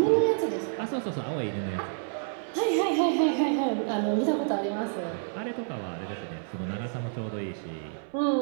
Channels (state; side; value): silent; left; 59 dB below the other